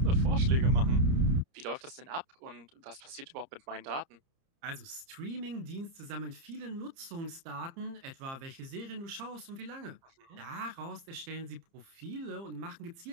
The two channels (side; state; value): left; late; 30 ms